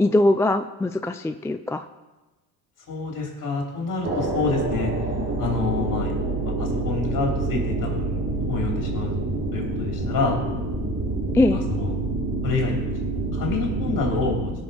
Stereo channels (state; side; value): normal; both; correlation 0.47